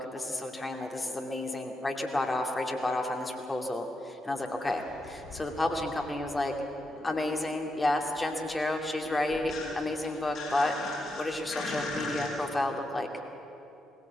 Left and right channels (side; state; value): both; normal; correlation 0.84